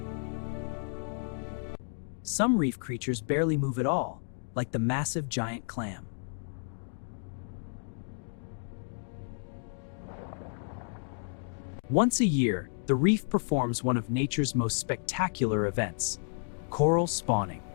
Some reef creatures barely move at all, like the massive giant clam. Once a year, the reef performs one of nature's most spectacular events: coral spawning.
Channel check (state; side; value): silent; right; digital silence